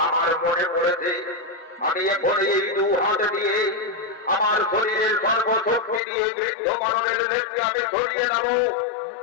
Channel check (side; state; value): right; drops out; at 6.0 s